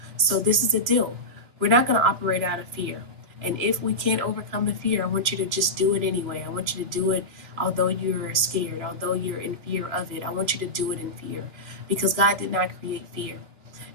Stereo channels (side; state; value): left; late; 3.0 ms